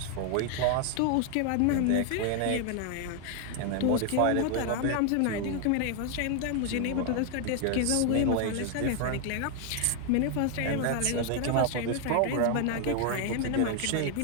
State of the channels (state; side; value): different; both; correlation 0.01